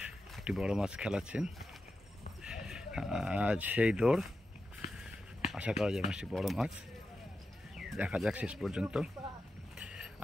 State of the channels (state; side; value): normal; both; correlation 0.90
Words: একটি বড় মাছ খেলাচ্ছেন। আজ সেই দৌড়, আশা করা যায় মাছটি বড় মাছ, দেখা যাক শেষ পর্যন্ত।